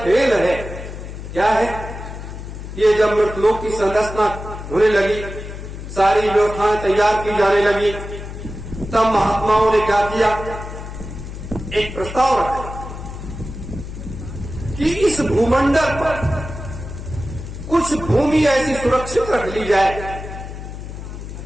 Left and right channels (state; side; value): noise; left; hum, 10 dB below the sound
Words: है, क्या है? ये जब मृतलोक की संरचना होने लगी, सारी व्यवस्थाएं तैयार की जाने लगी, तब महात्माओं ने क्या किया? एक प्रस्ताव रखा कि इस भूमंडल पर कुछ भूमि ऐसी सुरक्षित रख ली जाए